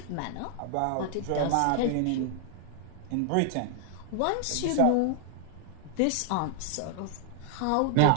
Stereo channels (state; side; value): different; both; correlation 0.00